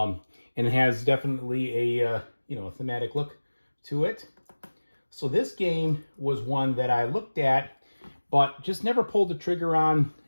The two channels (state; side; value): inverted; both; correlation -1.00